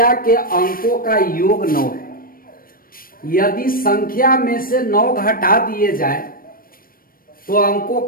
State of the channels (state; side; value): late; right; 0.41 ms